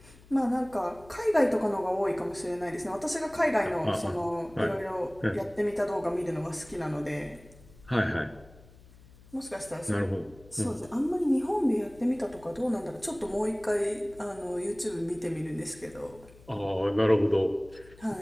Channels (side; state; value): left; noise; hum, 23 dB below the sound